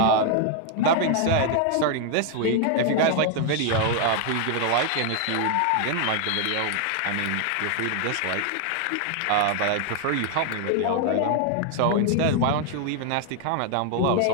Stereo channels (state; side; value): different; both; correlation 0.00